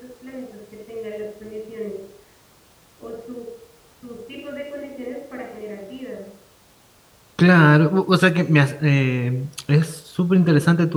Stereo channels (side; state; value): both; identical; correlation 1.00